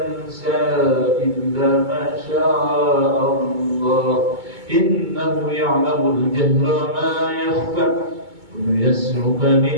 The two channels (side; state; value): left; late; 2.2 ms